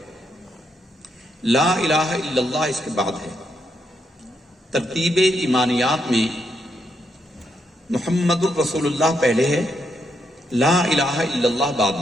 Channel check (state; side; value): normal; both; correlation 0.79